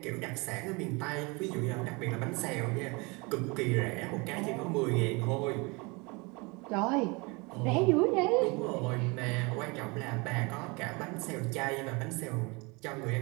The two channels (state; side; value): quieter; left; 27.8 dB